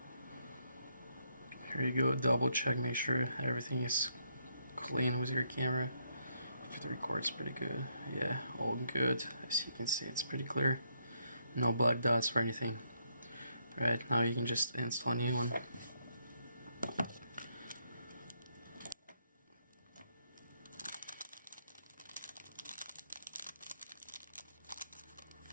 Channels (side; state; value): both; inverted; correlation -0.75